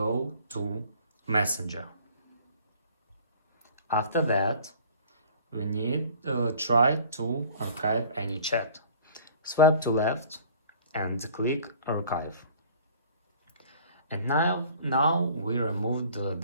to Messenger. After that we need to try to archive any chat. Swipe to left and click archive. And now we removed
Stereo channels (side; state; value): both; inverted; correlation -0.49